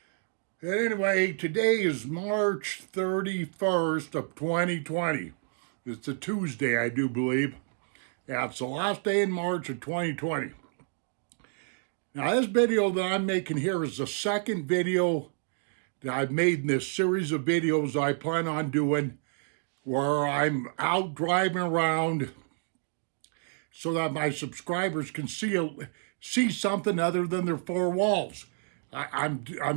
And anyway, today is March 31st of 2020. It's a Tuesday, I do believe. Yeah, it's the last day in March of 2020. Now, this video that I'm making here is the second video that I've made in this series of videos I plan on doing where I'm out driving around so that my subscribers can see something other than their four walls. I'm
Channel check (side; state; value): left; silent; digital silence